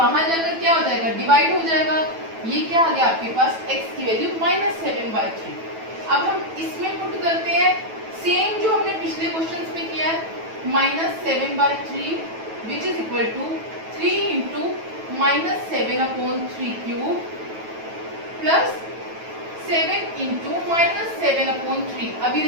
जाकर क्या हो जाएगा, डिवाइड हो जाएगा। ये क्या आ गया आपके पास, x की वैल्यू -7/3। अब हम इसमें पुट करते हैं सेम जो हमने पिछले क्वेश्चंस में किया है, -7/3 which is equal to 3 into -7/3³ plus 7 into -7/3। अभी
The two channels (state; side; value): late; left; 9.1 ms